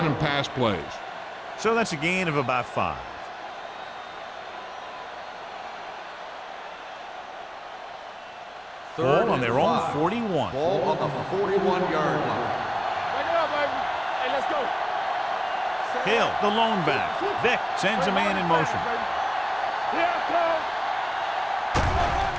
and pass plays. So that's a gain of about 5. Ball on their own 41. Ball on the 41-yard line. Back it up, baby. Hey, let's go. Hill, the lone back. Vic sends a man in motion.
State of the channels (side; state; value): both; identical; correlation 1.00